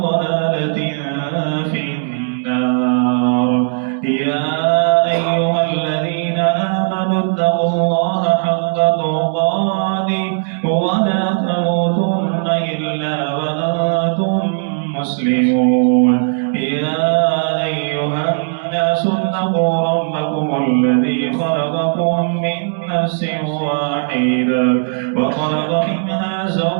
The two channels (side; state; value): left; silent; digital silence